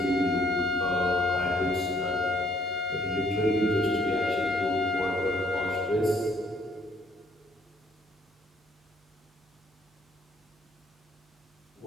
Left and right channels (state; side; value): normal; both; correlation 0.64